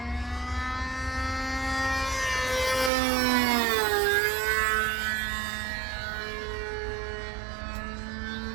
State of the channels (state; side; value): drops out; left; at 2.9 s